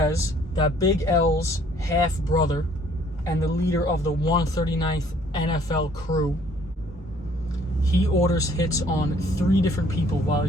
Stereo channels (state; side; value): normal; both; correlation 0.60